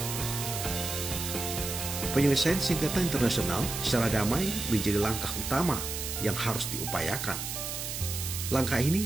Penyelesaian sengketa internasional secara damai menjadi langkah utama yang harus diupayakan. Langkah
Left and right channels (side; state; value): right; noise; hiss, 5 dB below the sound